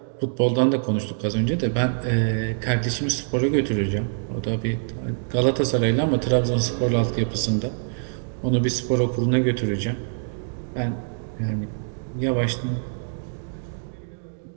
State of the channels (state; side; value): silent; left; digital silence